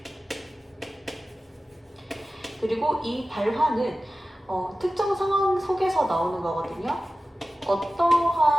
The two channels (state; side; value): normal; both; correlation 0.95